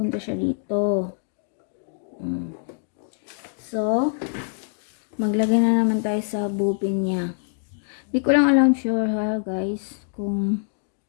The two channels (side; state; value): right; silent; digital silence